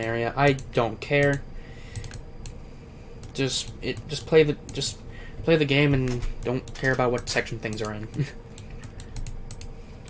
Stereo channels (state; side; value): identical; both; correlation 1.00